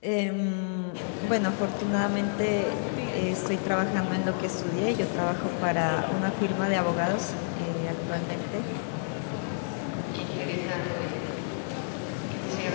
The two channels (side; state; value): right; silent; digital silence